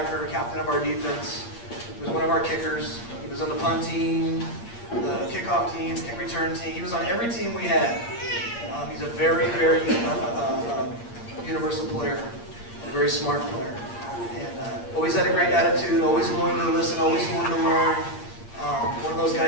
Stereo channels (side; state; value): right; late; 8.6 ms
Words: captain of our defense. He was one of our kickers. He was on the punt team, the kickoff team, kick return team. He was on every team we had. He's a very universal player and a very smart player. And always had a great attitude, always willing to listen, always willing to learn. One of those